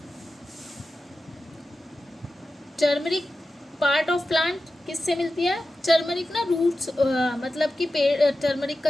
Turmeric part of plant किससे मिलती है? टर्मरिक ना रूट्स, मतलब कि पेड़, टर्मरिक का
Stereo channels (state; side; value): normal; both; correlation 0.93